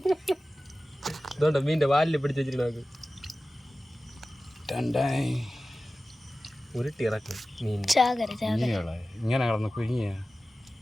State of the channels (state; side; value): normal; both; correlation 0.96